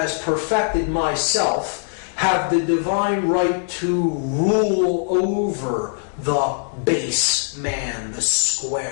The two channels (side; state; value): right; silent; digital silence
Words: perfected myself, have the divine right to rule over the base man, the